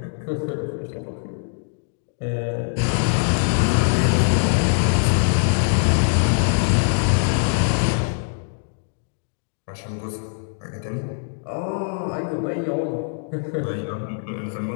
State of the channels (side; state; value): right; silent; digital silence